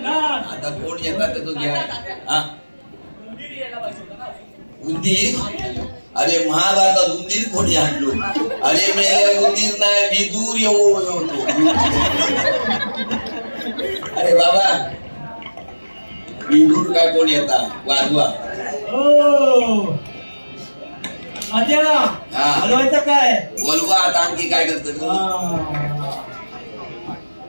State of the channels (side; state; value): both; inverted; correlation -1.00